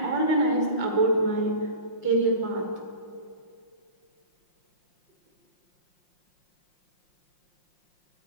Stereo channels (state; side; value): late; right; 5.6 ms